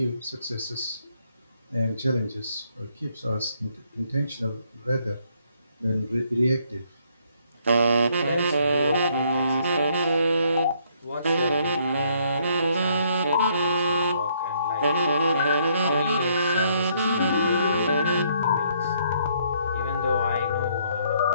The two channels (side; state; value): both; inverted; correlation -0.69